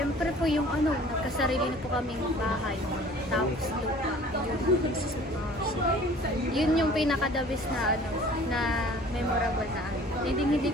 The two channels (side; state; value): both; normal; correlation 0.49